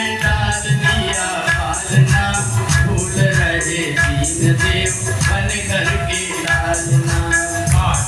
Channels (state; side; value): identical; both; correlation 1.00